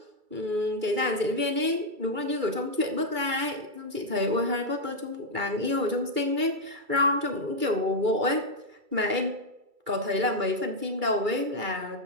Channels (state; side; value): late; left; 2.3 ms